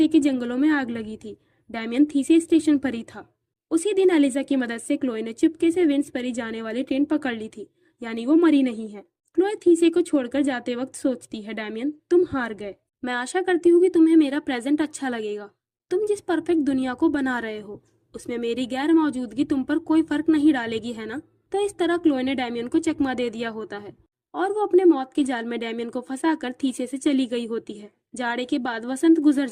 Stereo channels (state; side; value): identical; both; correlation 1.00